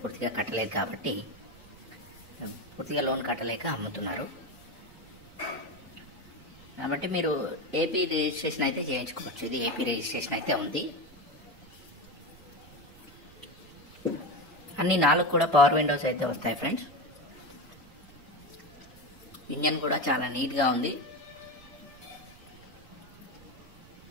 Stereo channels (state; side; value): noise; right; rumble, 22 dB below the sound